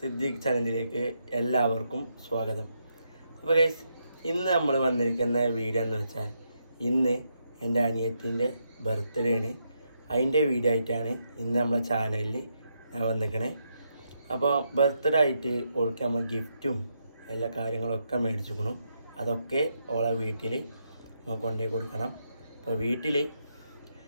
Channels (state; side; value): inverted; both; correlation -0.80